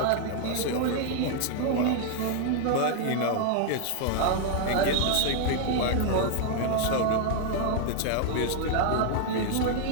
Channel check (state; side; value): different; both; correlation 0.00